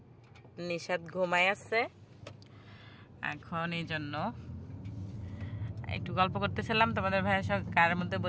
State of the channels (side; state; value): both; identical; correlation 1.00